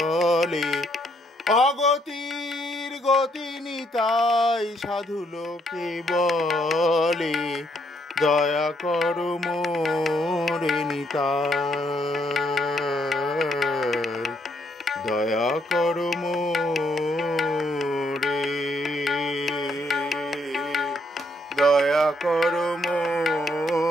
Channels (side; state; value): both; normal; correlation 0.72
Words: অগতির গতি নিতাই সাধু লোকে বলে, দয়া করো মোরে নিতাই, দয়া করো মোরে, দয়া করো